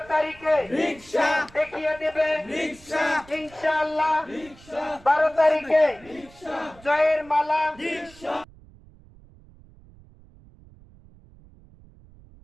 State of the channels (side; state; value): right; noise; rumble, 24 dB below the sound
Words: তারিখে রিকশা দেখিয়ে দেবে রিকশা ইনশাআল্লাহ রিকশা 12 তারিখে রিকশা জয়ের মালা রিকশা